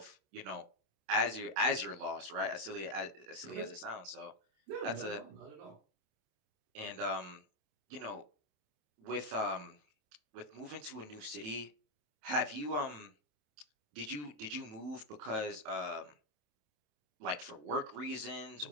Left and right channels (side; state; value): left; late; 27 ms